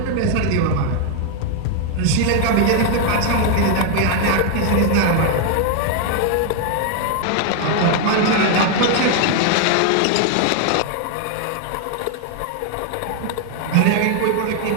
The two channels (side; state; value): both; different; correlation 0.00